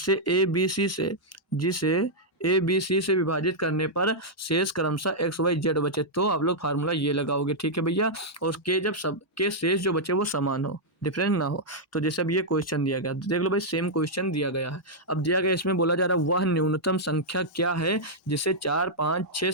ए बी सी से विभाजित करने पर शेष क्रमशः एक्स वाई जेड बचे, तो आप लोग फार्मूला ये लगाओगे, ठीक है भैया। और के जब सब के शेष जो बचे वो समान हो, डिफरेंट ना हो। तो जैसे अब ये क्वेश्चन दिया गया, देख लो भाई, सेम क्वेश्चन दिया गया है। अब दिया गया, इसमें बोला जा रहा है वह न्यूनतम संख्या क्या है जिसे 4, 5, 6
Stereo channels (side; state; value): both; normal; correlation -0.06